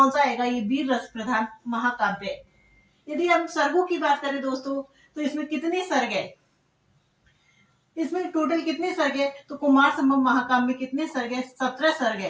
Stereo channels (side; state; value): both; identical; correlation 1.00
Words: सा आएगा? ये वीर रस प्रधान महाकाव्य है। यदि हम सर्गों की बात करें दोस्तों तो इसमें कितने सर्ग है? इसमें टोटल कितने सर्ग है? तो कुमार संभव महाकाव्य में कितने सर्ग है? 17 सर्ग